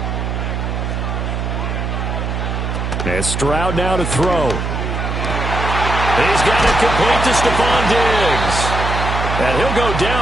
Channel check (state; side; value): noise; right; hum, 2 dB below the sound